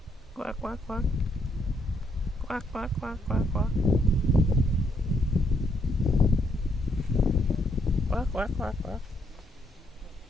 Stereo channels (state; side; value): normal; both; correlation 0.73